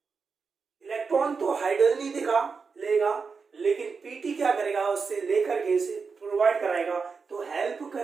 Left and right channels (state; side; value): quieter; left; 5.1 dB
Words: इलेक्ट्रॉन तो हाइड्रोजन ही दिखा लेगा, लेकिन पीटी क्या करेगा, उससे लेकर के इसे प्रोवाइड कराएगा, तो हेल्प